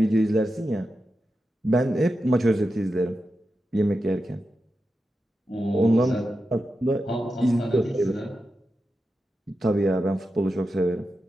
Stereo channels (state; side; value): normal; both; correlation 0.90